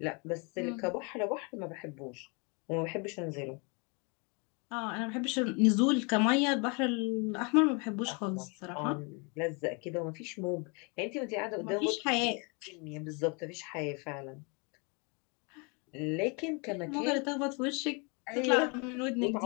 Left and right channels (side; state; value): right; quieter; 32.6 dB